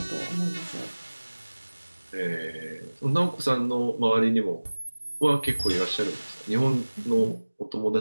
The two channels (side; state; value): both; inverted; correlation -1.00